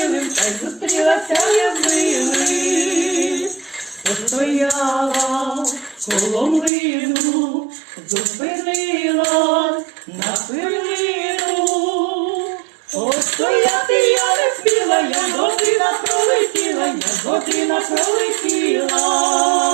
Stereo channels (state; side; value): drops out; left; at 6.7 s